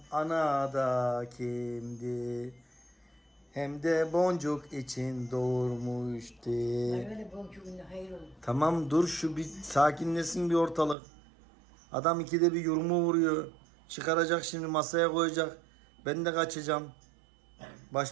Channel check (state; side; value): drops out; left; at 11.0 s